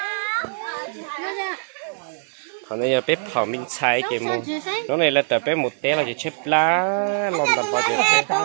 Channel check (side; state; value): left; silent; digital silence